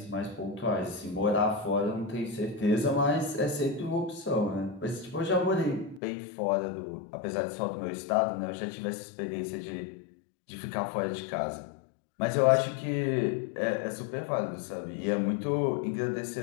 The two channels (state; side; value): drops out; right; at 6.0 s